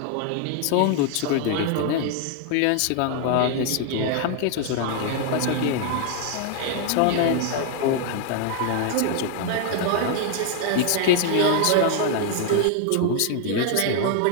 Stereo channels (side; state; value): both; different; correlation 0.00